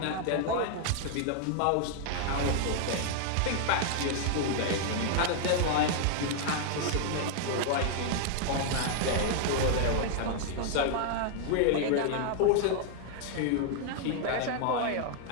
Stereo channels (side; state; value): both; different; correlation 0.00